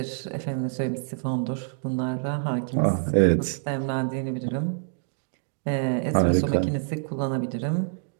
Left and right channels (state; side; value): silent; left; digital silence